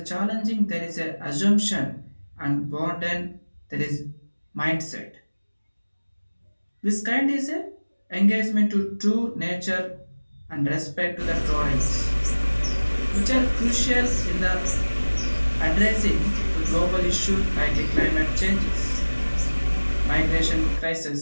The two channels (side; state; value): both; inverted; correlation -1.00